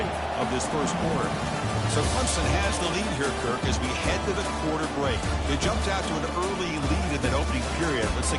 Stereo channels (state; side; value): identical; both; correlation 1.00